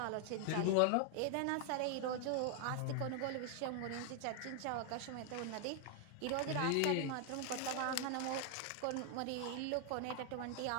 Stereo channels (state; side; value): different; both; correlation 0.00